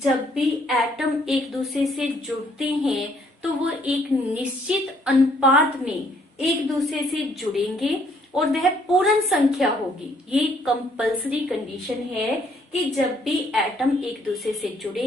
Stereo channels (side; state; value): both; normal; correlation 0.66